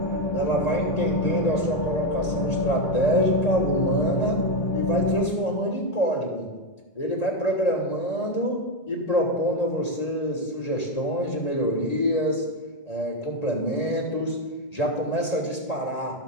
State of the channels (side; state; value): right; late; 1.8 ms